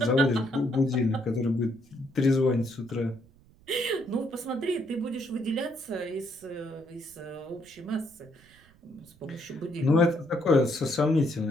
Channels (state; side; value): noise; right; rumble, 28 dB below the sound